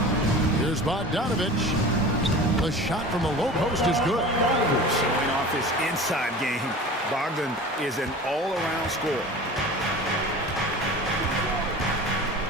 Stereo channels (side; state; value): both; normal; correlation 0.37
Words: Here's Bogdanovich. The shot from the low post is good. Showing off his inside game. Bogdan is an all-around scorer.